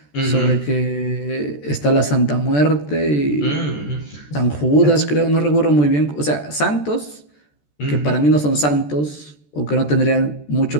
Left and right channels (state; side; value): late; right; 14 ms